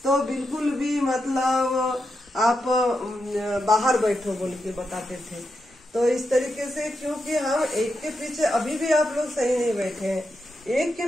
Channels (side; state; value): both; normal; correlation 0.86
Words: तो बिल्कुल भी मतलब आप बाहर बैठो बोल के बताते थे। तो इस तरीके से, क्योंकि हम एक के पीछे अभी भी आप लोग सही नहीं बैठे हैं, एक के